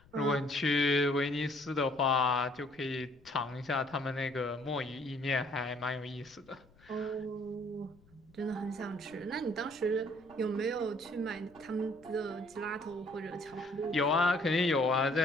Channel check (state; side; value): noise; left; rumble, 28 dB below the sound